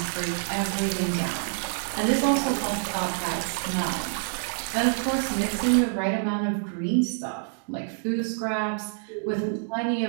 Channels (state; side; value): silent; left; digital silence